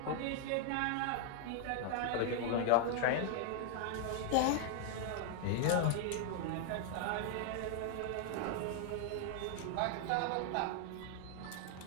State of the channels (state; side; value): different; both; correlation 0.00